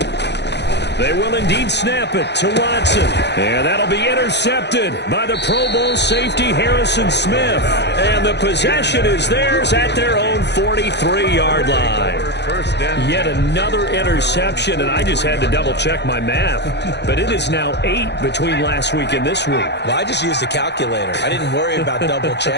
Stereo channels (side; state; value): right; late; 0.50 ms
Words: They will indeed snap it to Watson. And that'll be intercepted by the Pro Bowl safety Harrison Smith. And the possession is theirs at their own 43-yard line. Yet another interception, and I just had to double-check my math. But it is now 8 between last week and this week. Well, I just used a calculator. I didn't worry about